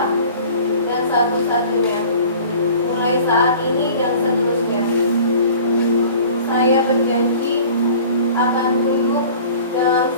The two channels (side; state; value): both; inverted; correlation -0.46